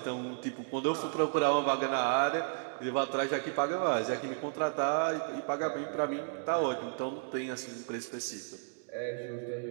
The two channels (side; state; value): left; silent; digital silence